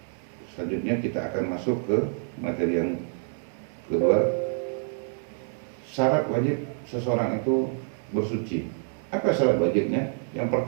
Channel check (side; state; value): left; silent; 60 dB below the other